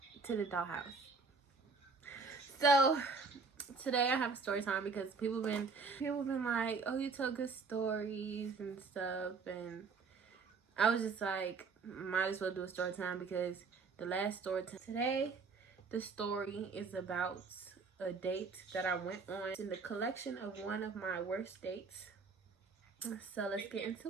to the dollhouse. So today I have a story time because people been like, oh, you tell good stories and stuff, and I was just like, might as well do a story time because the last story time today, the story is about a date that I went on in the collection of one of my worst dates. So let's get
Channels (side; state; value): left; quieter; 4.6 dB